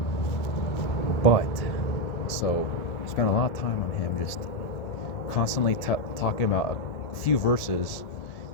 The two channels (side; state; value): right; late; 1.7 ms